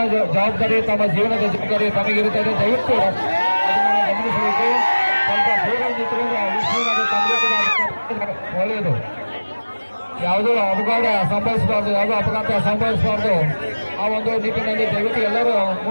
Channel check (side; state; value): both; inverted; correlation -1.00